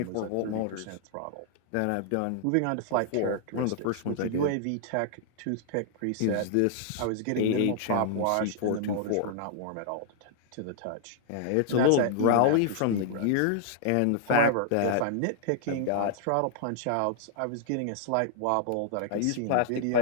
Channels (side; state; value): both; different; correlation -0.01